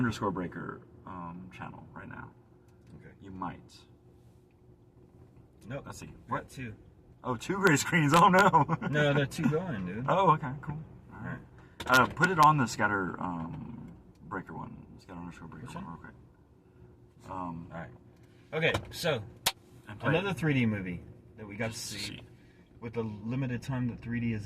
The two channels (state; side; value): identical; both; correlation 1.00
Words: channel right now. Okay. You might. Nope. Let's see. What? 2. Oh, 2 gray screens. Oh no. No, they're 2 going, dude. Oh, okay, cool. All right. Put it on the Scatter_Breaker one. Scatter_Breaker one real quick. All right. Okay, so another 3D movie that we got to see. With the limited time that 3D is